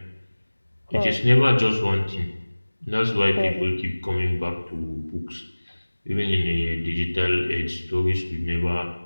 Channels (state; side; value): inverted; both; correlation -1.00